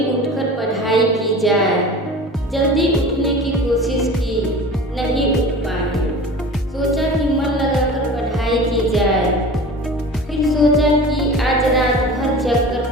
उठकर पढ़ाई की जाए। जल्दी उठने की कोशिश की, नहीं उठ पाई। सोचा कि मन लगाकर पढ़ाई की जाए। फिर सोचा कि आज रात भर जगकर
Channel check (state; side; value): normal; both; correlation 0.38